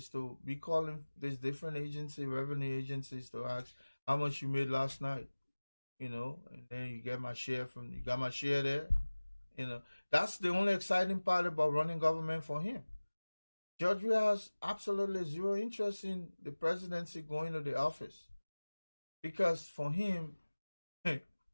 to be calling these different revenue agencies to ask how much you made last night, and then you got my share there. That's the only exciting part about running government for him. George Weah has absolutely zero interest in the presidency going to the office because for him,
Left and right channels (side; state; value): both; inverted; correlation -1.00